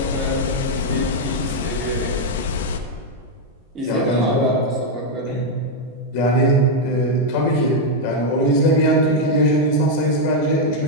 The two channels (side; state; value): both; normal; correlation 0.01